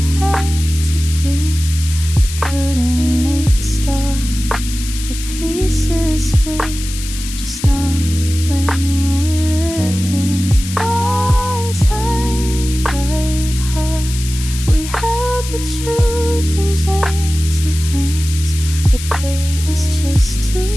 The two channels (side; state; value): left; noise; hiss, 10 dB below the sound